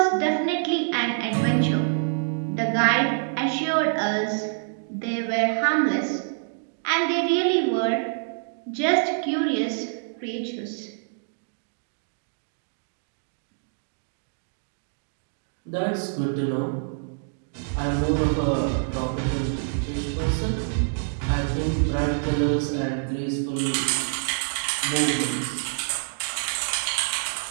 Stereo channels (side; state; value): left; silent; digital silence